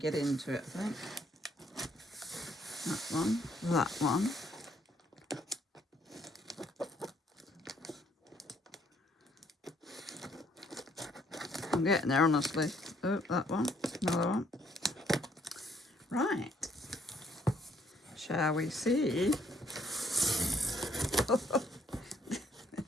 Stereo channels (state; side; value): normal; both; correlation 0.68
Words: into it, I think. That one, that one. I'm getting there, honestly. Oh, that one, another one. Right. Shall we see?